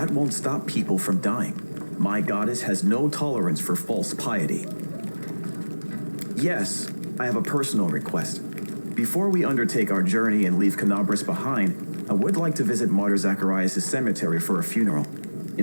won't stop people from dying. My goddess has no tolerance for false piety. Yes, I have a personal request. Before we undertake our journey and leave Canabras behind, I would like to visit Martyr Zacharias' cemetery for a funeral.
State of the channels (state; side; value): inverted; both; correlation -1.00